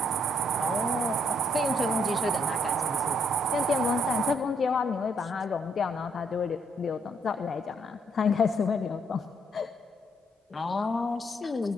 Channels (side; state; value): both; normal; correlation 0.72